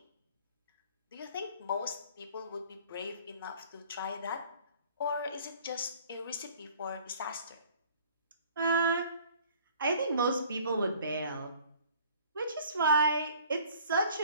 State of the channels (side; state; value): both; inverted; correlation -0.52